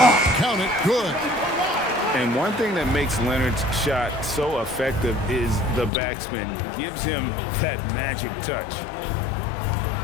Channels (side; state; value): right; drops out; at 5.9 s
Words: count it. Good. And one thing that makes Leonard's shot so effective is the backspin. Gives him that magic touch.